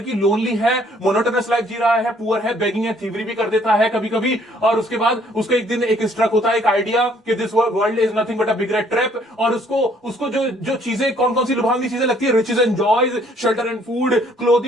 लोनली है, मोनोटोनस लाइफ जी रहा है, पुअर है, बेगिंग है, थीवरी भी कर देता है कभी कभी, और उसके बाद उसको एक दिन एक स्ट्रक होता है, एक आइडिया कि this world is nothing but a big rat trap. और उसको जो जो चीजें, कौन कौन सी लुभावनी चीजें लगती है? Riches and joys, shelter and food,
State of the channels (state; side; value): normal; both; correlation 0.63